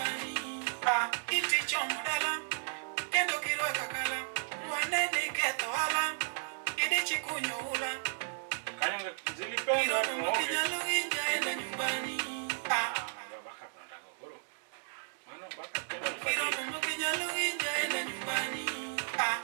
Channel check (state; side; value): silent; left; digital silence